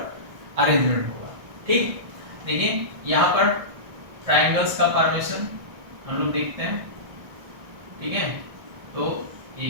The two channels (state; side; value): late; left; 1.6 ms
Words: अरेंजमेंट होगा, ठीक। देखिए यहाँ पर ट्रायंगल्स का फॉर्मेशन हम लोग देखते हैं, ठीक है। तो